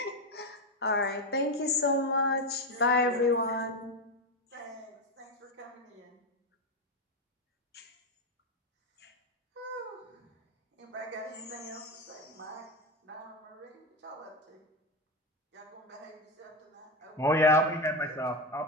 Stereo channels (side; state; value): both; normal; correlation 0.12